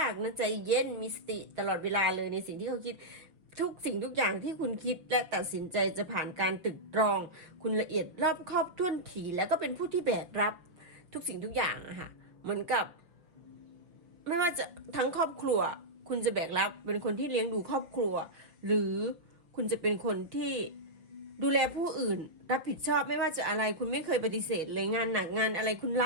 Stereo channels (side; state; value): left; late; 5.8 ms